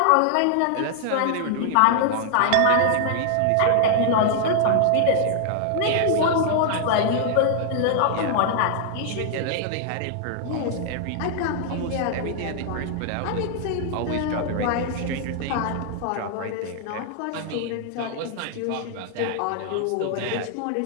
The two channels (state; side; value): different; both; correlation 0.00